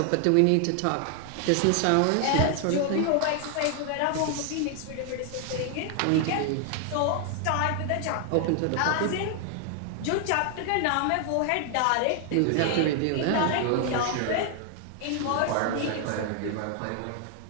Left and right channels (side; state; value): both; different; correlation 0.00